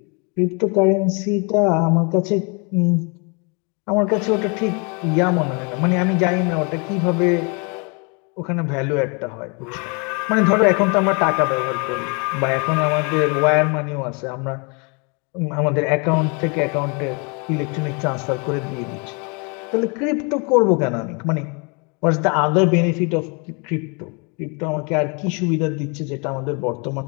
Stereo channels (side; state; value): right; quieter; 33.2 dB